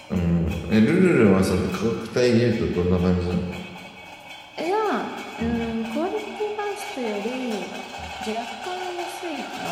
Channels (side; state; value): both; identical; correlation 1.00